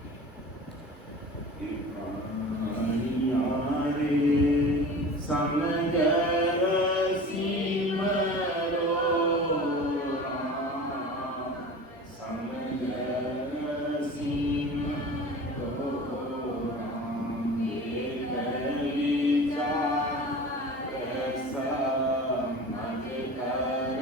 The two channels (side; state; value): both; normal; correlation 0.37